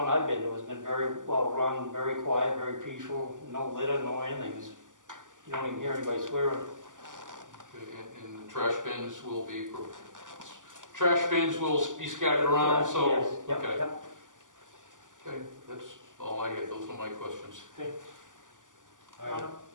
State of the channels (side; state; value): left; late; 0.88 ms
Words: I've been to has been very well run, very quiet, very peaceful, no litter, no anything. You don't even hear anybody swearing. Okay, and the trash bins will be scattered around, Yes, so, yes, yep, okay. yep. Okay, that's all I had, those are my questions. Okay. Yeah.